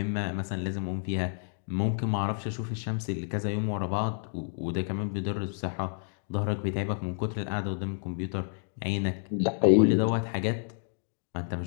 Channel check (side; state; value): right; silent; digital silence